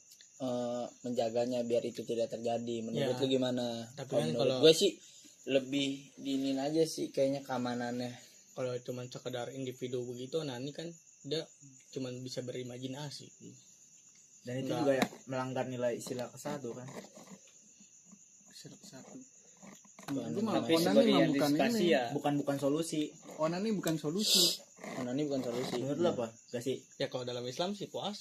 menjaganya biar itu tidak terjadi. Menurut Ya. lu gimana? Tapi Kalau kan menurut kalau- gue sih lebih diinin aja sih kayaknya keamanannya. Kalau cuma sekedar individu begitu, nah ini kan dia cuma bisa berimajinasi. Dan itu Nggak. juga ya melanggar nilai sila ke-1 kan. Satu. Bukan Itu mah Tapi onani sebagai mah bukan antisipasi ini. ya. Bukan solusi. Onani bukan solusi. Ini bukan solusi. Menurut lu apa? Gak sih? Ya kalau dalam Islam sih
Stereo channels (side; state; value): both; identical; correlation 1.00